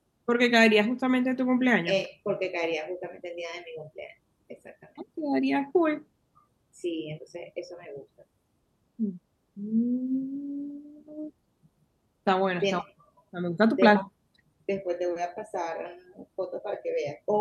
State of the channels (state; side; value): identical; both; correlation 1.00